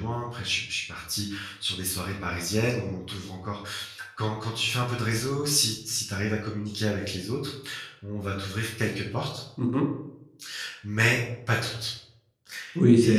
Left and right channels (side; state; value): both; identical; correlation 1.00